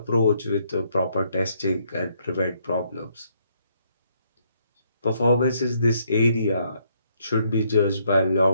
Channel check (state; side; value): inverted; both; correlation -0.71